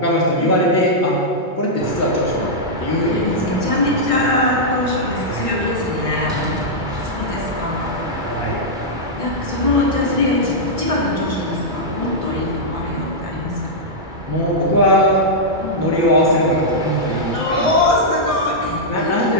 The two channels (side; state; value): left; late; 2.3 ms